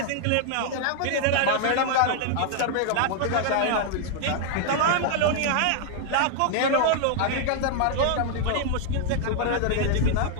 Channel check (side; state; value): both; different; correlation 0.00